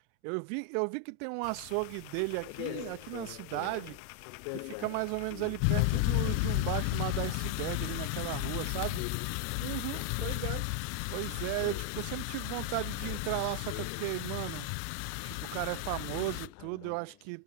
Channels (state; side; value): different; both; correlation 0.00